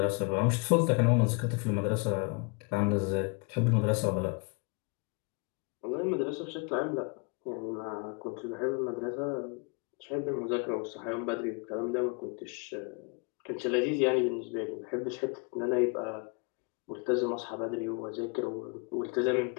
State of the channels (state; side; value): quieter; right; 32.9 dB